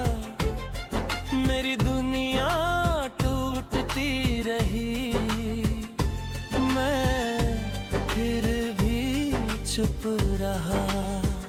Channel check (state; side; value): identical; both; correlation 1.00